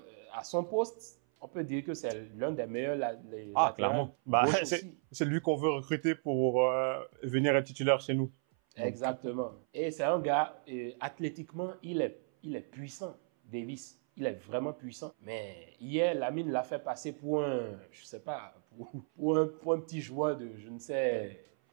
à son poste, on peut dire que c'est l'un des meilleurs clairement. C'est lui qu'on veut recruter pour venir être titulaire chez nous. Exactement. Et c'est un gars, athlétiquement, il est puissant, Davis. Il est vraiment puissant. Mais hier, Lamine l'a fait passer pour un, je sais pas, pour un petit joueur de, je ne sais.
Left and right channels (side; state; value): left; silent; 55 dB below the other